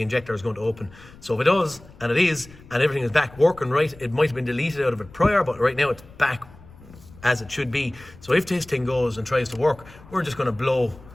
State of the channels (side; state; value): left; noise; rumble, 22 dB below the sound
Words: injector is going to open. So if it does, and it is, and everything is back working right, it might have been deleted out of it prior, but right now it's back as it should be. So if this thing goes and tries to work, we're just going to blow